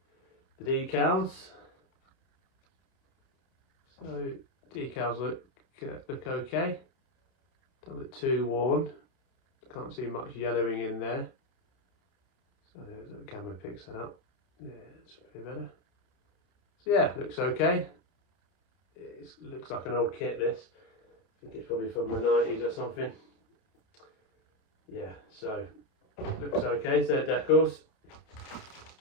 The decals. So decals look okay. Don't look too worn. Can't see much yellowing in there. So the camera picks that up. Yeah, it's pretty better. So yeah, looks okay. It looks like an old kit, this. I think it's probably from the 90s or something. Yeah, so looks okay. So decals.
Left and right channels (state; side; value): late; right; 30 ms